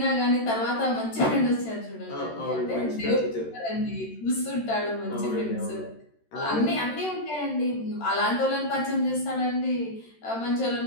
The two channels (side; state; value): right; late; 13 ms